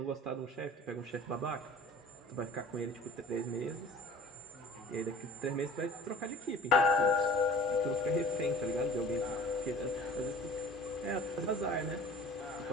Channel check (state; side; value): normal; both; correlation 0.45